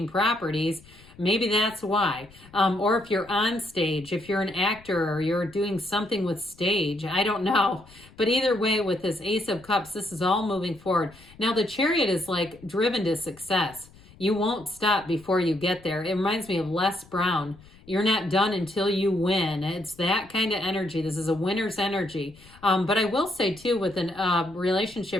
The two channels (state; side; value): noise; left; rumble, 24 dB below the sound